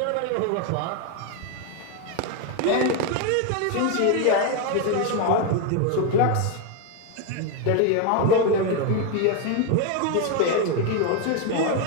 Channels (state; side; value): different; both; correlation 0.02